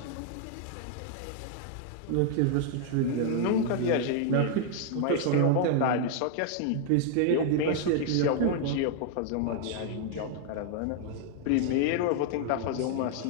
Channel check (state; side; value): different; both; correlation 0.00